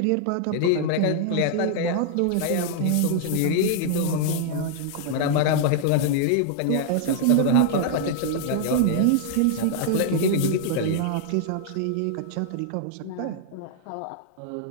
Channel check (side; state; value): both; different; correlation 0.00